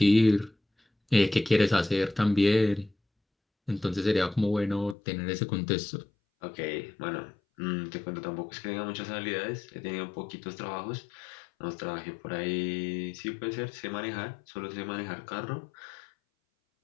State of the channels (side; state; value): right; drops out; at 5.0 s